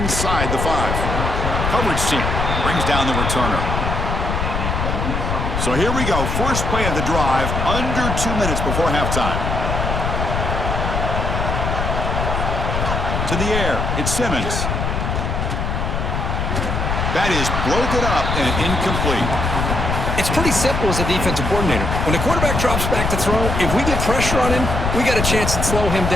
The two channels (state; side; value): noise; left; rumble, 1 dB below the sound